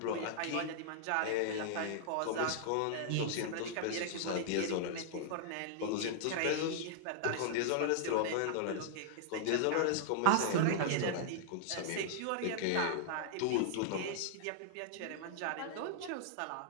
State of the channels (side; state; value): both; different; correlation -0.01